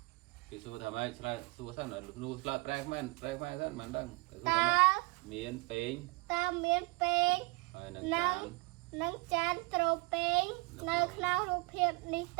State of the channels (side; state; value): left; quieter; 26.4 dB